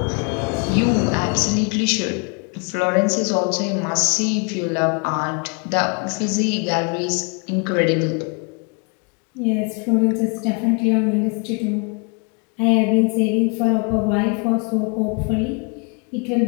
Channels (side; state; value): right; quieter; 35.0 dB